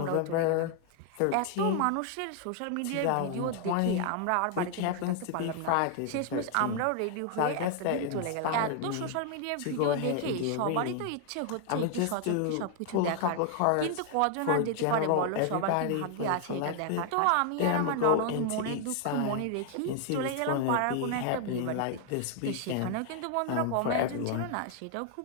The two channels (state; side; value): different; both; correlation 0.00